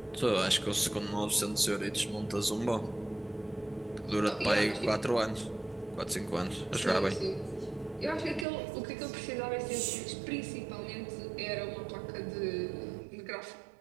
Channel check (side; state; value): left; drops out; at 8.5 s